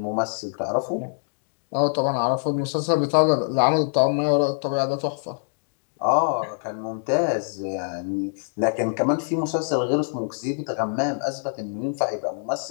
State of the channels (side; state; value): right; silent; digital silence